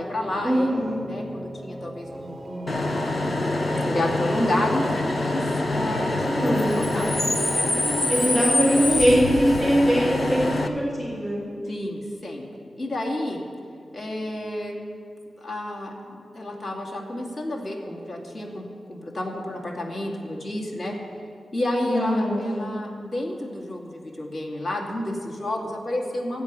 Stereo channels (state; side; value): normal; both; correlation 0.93